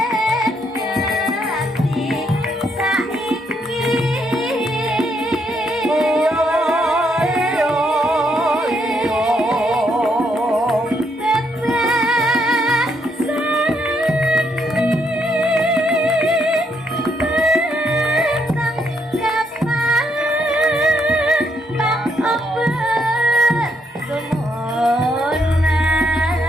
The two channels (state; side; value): normal; both; correlation 0.75